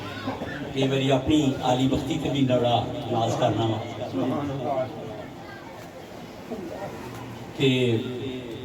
کئی باری اپنی عالی بختی تے بھی بڑا ناز کرنا وا کہ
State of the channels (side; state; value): both; identical; correlation 1.00